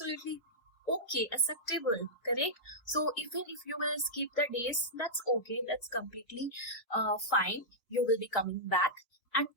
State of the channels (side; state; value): right; late; 2.9 ms